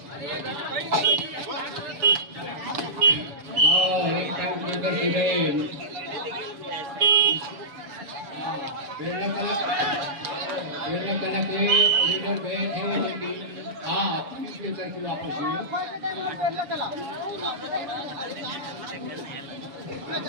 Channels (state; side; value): late; left; 7.0 ms